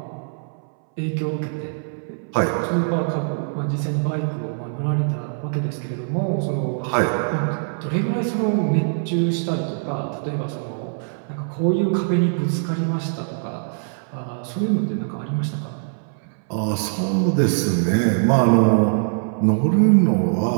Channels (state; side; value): silent; left; 63 dB below the other